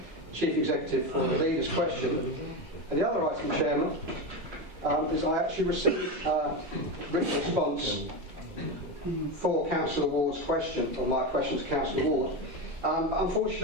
Chief Executive for the leader's question. And the other item, Chairman, is I actually received a written response for Councillor Ward's question, or my question to Councillor Ward. Unfortunately,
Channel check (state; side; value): normal; both; correlation 0.17